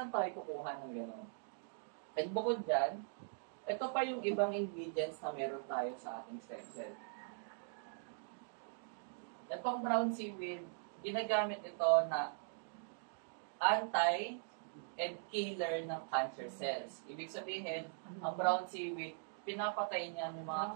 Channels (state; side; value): silent; left; digital silence